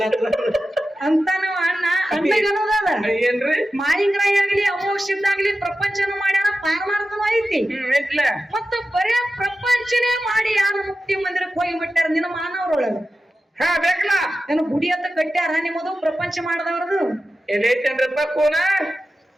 ಅಂತ ನಾವು ಅಣ್ಣ ಅನ್ನೋದದ ಏನ್ರಿ? ಮಾಳಿಂಗರಾಯ ಆಗ್ಲಿ ಅಮೋಕ್ಷದ್ದಾಗ್ಲಿ ಪ್ರಪಂಚನ ಮಾಡ್ಯಾರ, ಪಾರಮಾರ್ಥನೂ ಐತಿ. ಮತ್ತು ಬರೇ ಪ್ರಪಂಚನೇ ಮಾಡಿ ಯಾರು ಮುಕ್ತಿ ಮಂದಿರಕ್ಕೆ ಹೋಗಿ ಬಿಟ್ಟಾರ ನಿನ್ನ ಮಾನವರೊಳಗ? ಬೇಕಲ್ಲ ಏನು ಗುಡಿ ಅಂತ ಕಟ್ಟ್ಯಾರ ನಿಮ್ಮದು ಪ್ರಪಂಚ ಮಾಡದವ್ರದು? ಎಲ್ಲೈತೇನ್ರಪ್ಪ ಕೋನ?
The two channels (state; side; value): normal; both; correlation 0.93